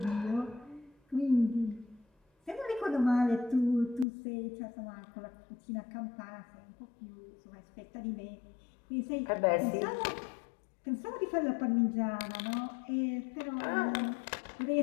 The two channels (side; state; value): right; drops out; at 4.0 s